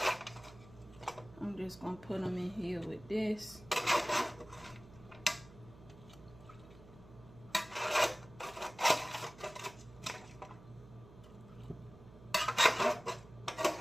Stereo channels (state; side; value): noise; right; hum, 20 dB below the sound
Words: I'm just gonna put them in here with this.